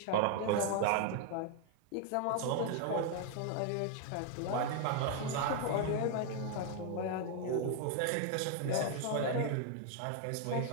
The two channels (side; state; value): both; different; correlation 0.00